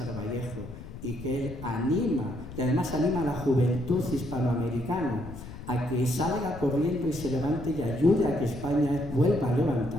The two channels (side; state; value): left; noise; rumble, 13 dB below the sound